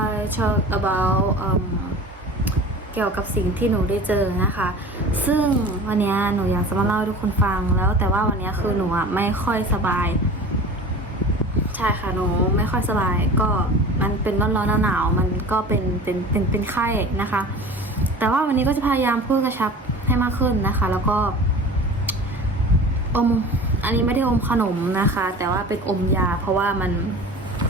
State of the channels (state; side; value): normal; both; correlation 0.38